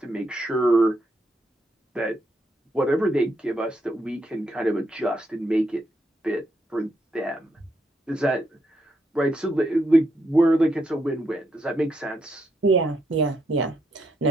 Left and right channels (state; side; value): normal; both; correlation 0.79